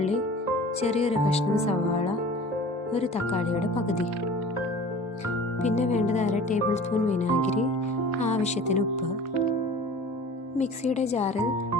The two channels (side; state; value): both; normal; correlation 0.42